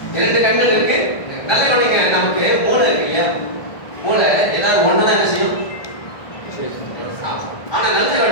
2 கண்கள் இருக்கு. நல்ல கவனிங்க, நமக்கு மூளை இருக்கு இல்லையா? மூளை ஏதாவது ஒண்ணுதான் என்ன செய்யும். ஆனா நல்ல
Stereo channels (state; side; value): late; right; 1.5 ms